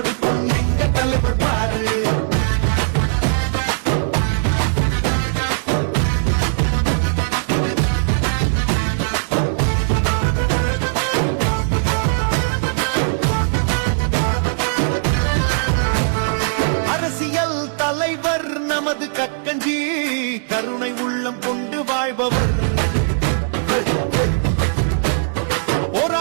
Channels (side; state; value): left; silent; digital silence